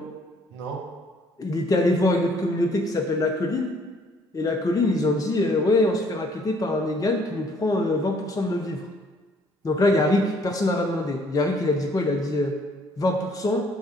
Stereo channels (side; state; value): both; normal; correlation 0.62